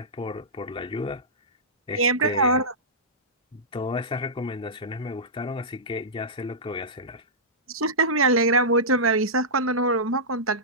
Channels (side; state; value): both; normal; correlation -0.16